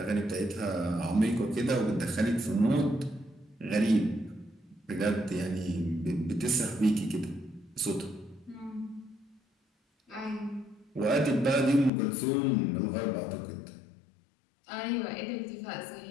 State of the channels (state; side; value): drops out; right; at 11.9 s